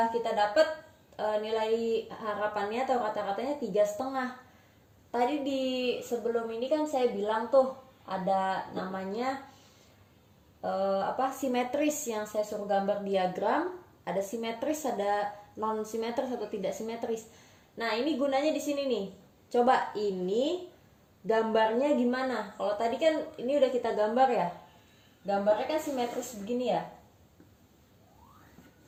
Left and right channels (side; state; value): both; identical; correlation 1.00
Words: kita dapat nilai harapannya atau kata-katanya 3,5. Tadi di sebelum ini kan saya bilang tuh ada namanya simetris, yang saya suruh gambar diagram. Ada simetris, ada non simetris atau tidak simetris. Nah ini gunanya di sini nih. Coba ini gambarnya gimana? Kalau tadi kan ini udah kita gambar ya. Gambarnya kan simetris begini ya.